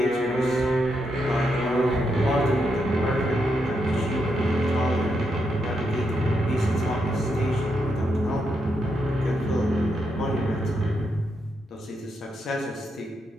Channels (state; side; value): normal; both; correlation 0.82